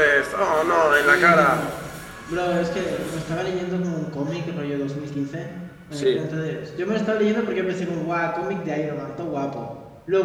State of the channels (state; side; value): identical; both; correlation 1.00